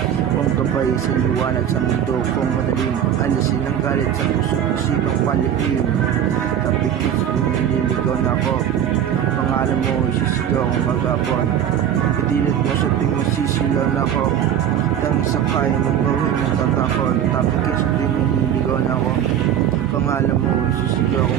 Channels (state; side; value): quieter; left; 9.8 dB